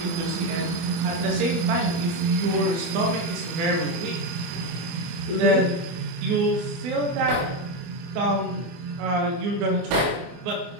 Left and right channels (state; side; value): late; left; 24 ms